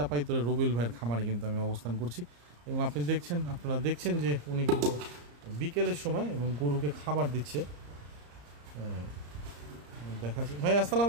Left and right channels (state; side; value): late; left; 34 ms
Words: রবিউল ভাইয়ের খামারে কিন্তু আমি অবস্থান করছি এবং আপনারা দেখছেন যে উনি কিন্তু বিকেলের সময় এবং গরুকে খাবার দিচ্ছে। দেখাচ্ছি ভাই। আসসালামু